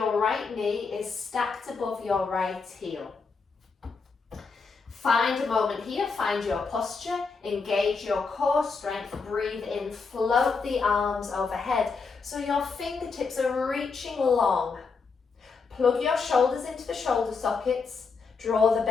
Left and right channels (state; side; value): quieter; right; 4.8 dB